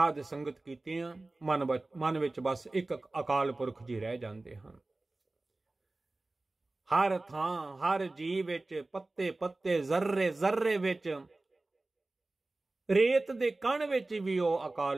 ਸੰਗਤ ਕੀਤੀਆਂ, ਮਨ ਵਿੱਚ ਬਸ ਇੱਕ ਅਕਾਲ ਪੁਰਖ ਜੀ ਰਹਿ ਜਾਂਦੇ ਹਨ। ਹਰ ਥਾਂ ਹਰ ਜੀਵ ਵਿੱਚ, ਪੱਤੇ ਪੱਤੇ, ਜ਼ਰਰੇ ਜ਼ਰਰੇ ਵਿੱਚ, ਰੇਤ ਦੇ ਕਣ ਵਿੱਚ ਵੀ ਉਹ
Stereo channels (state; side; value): quieter; left; 3.0 dB